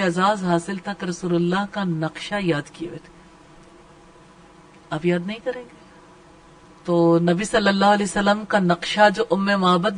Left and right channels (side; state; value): both; identical; correlation 1.00